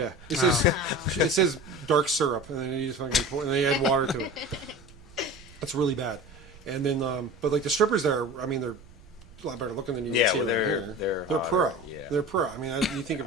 it. it says dark syrup, and then you just fucking pour, and then you add water to it. That's really bad. And then, but like the strippers there, I mean, they're a lot better looking than you Yeah, see well, around they're- here. they're pro. hotter, yeah. They're pro. I mean, you think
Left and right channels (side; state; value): right; noise; rumble, 22 dB below the sound